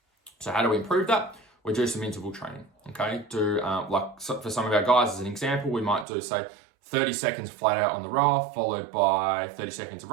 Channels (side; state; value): left; drops out; at 6.1 s